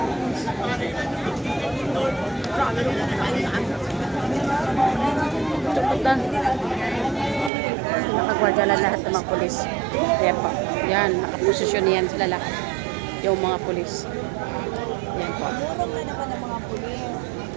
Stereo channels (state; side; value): drops out; left; at 7.5 s